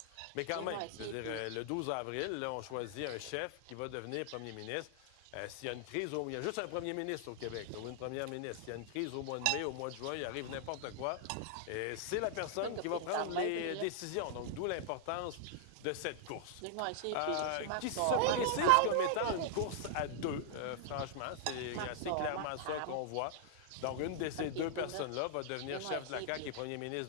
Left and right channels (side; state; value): both; different; correlation -0.01